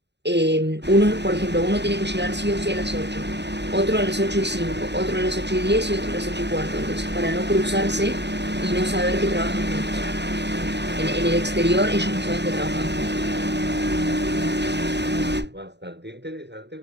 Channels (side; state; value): left; late; 0.50 ms